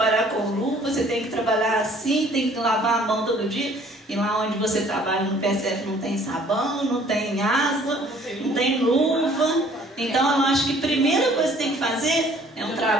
com luva, você tem que trabalhar assim, tem que lavar a mão todo dia, e lá onde você trabalha no PSF não tem sabão, não tem água, não tem luva. Então eu acho que a primeira coisa que tem que fazer é um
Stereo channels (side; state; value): both; normal; correlation 0.57